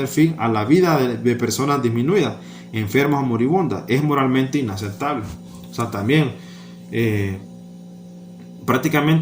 fin a la vida de personas disminuidas, enfermas o moribundas. Es moralmente inaceptable. O sea, también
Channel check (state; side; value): identical; both; correlation 1.00